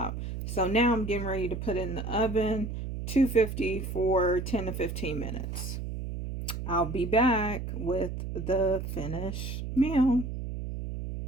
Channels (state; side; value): noise; right; hum, 5 dB below the sound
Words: So now I'm getting ready to put it in the oven, 250 for 10 to 15 minutes. I'll be back with the finished meal.